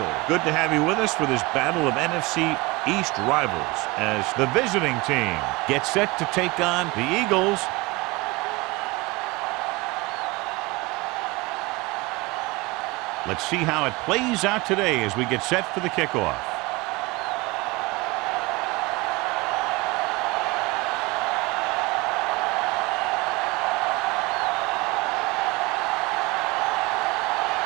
Good to have you with us for this battle of NFC East rivals as the visiting team gets set to take on the Eagles. Let's see how it plays out today as we get set for the kickoff.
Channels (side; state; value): left; quieter; 23.4 dB